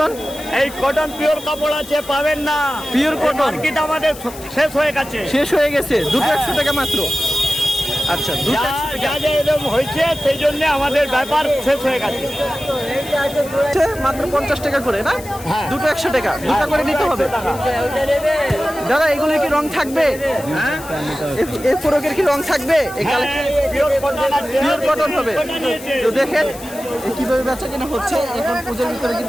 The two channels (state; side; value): noise; left; hiss, 16 dB below the sound